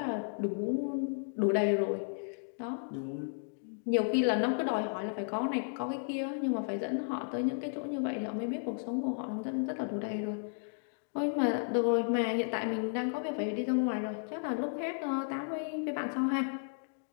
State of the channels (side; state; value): right; silent; digital silence